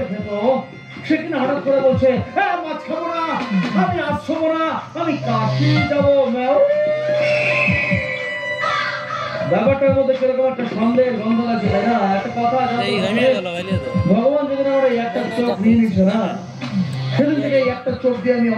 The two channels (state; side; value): identical; both; correlation 1.00